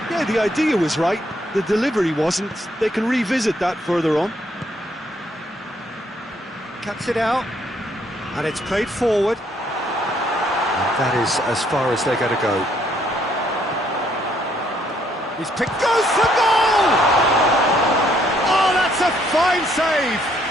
Yeah, the idea was right, the delivery wasn't. They can revisit that further on. Cuts it out, and it's played forward. And that is as far as they're going to go. He's picked, goes for goal! Oh, that's a fine save!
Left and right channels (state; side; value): normal; both; correlation 0.69